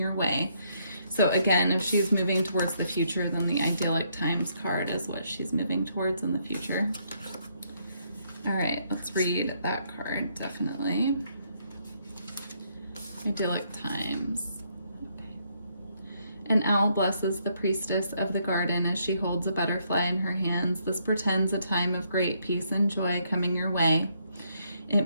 way. So again, if she's moving towards the future, then the Idyllic Times card is what she's moving towards in the future. All right, let's read that card, definitely. Idyllic Times. An owl blesses the priestess of the garden as she holds a butterfly in her hands. This portends a time of great peace and joy coming your way. It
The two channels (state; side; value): inverted; both; correlation -0.73